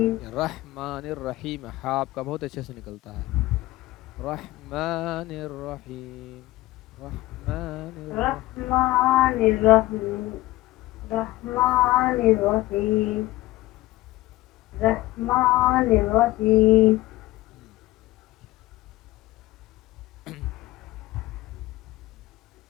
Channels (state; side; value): quieter; right; 18.3 dB